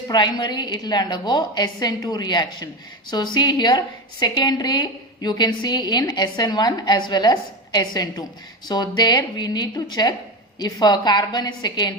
it will undergo SN2 reaction. So see here, secondary you can see in SN1 as well as SN2. So there we need to check if a carbon is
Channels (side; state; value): both; normal; correlation 0.20